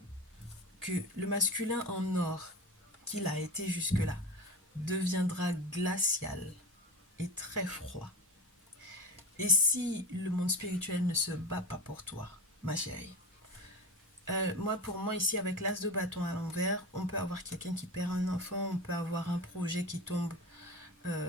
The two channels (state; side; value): normal; both; correlation 0.27